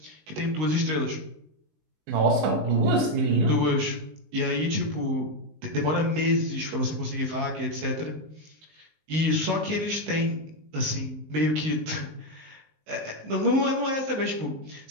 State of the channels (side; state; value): left; late; 19 ms